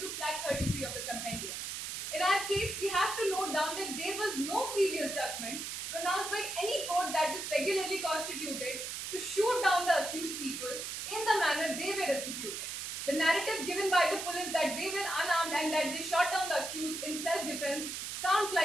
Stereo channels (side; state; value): right; noise; hiss, 5 dB below the sound